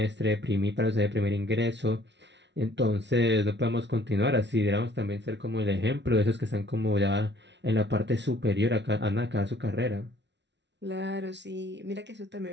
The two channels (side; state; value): left; late; 0.51 ms